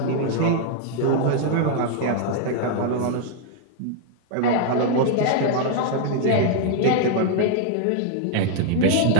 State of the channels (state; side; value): different; both; correlation 0.00